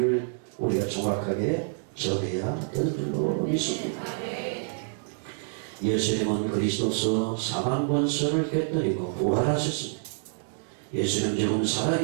우리가 정확하게 전해야 되는 줄로 믿습니다. 예수님은 그리스도서 사망 권세를 깨뜨리고 부활하셨습니다. 예수님 지금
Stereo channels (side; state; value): left; silent; digital silence